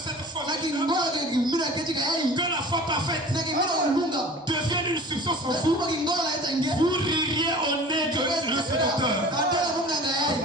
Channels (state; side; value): normal; both; correlation 0.42